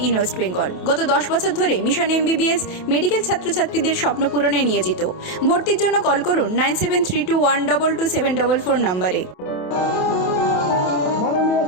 in West Bengal. গত 10 বছর ধরে মিশন এমবিবিএস মেডিকেল ছাত্রছাত্রীদের স্বপ্ন পূরণে নিয়োজিত। ভর্তির জন্য কল করুন 9732122744 নম্বরে। মাননীয়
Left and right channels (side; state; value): right; late; 27 ms